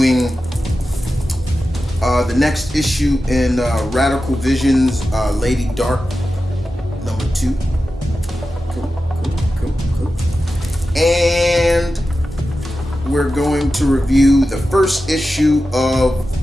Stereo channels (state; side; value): normal; both; correlation 0.93